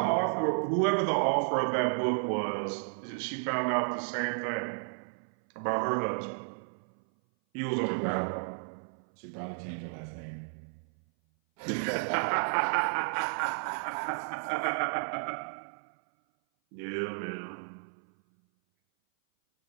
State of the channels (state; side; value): silent; left; 56 dB below the other